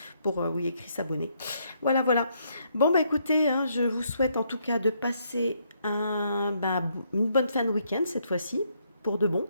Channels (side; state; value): both; inverted; correlation -0.73